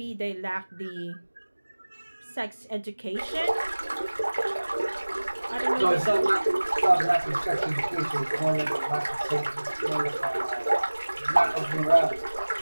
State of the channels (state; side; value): inverted; both; correlation -1.00